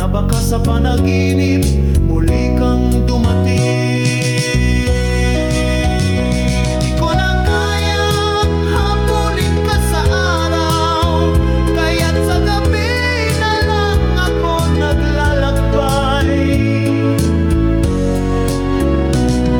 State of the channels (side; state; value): both; identical; correlation 1.00